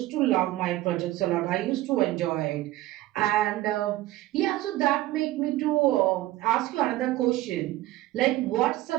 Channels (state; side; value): quieter; left; 16.2 dB